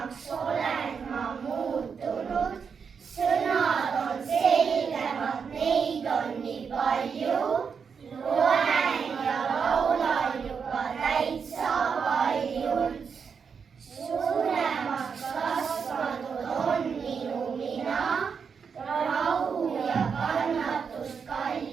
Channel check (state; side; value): quieter; left; 6.2 dB